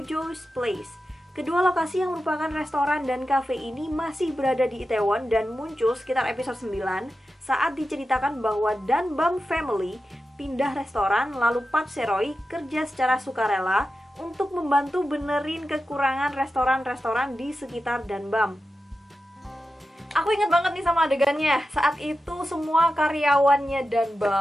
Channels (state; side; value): normal; both; correlation 0.92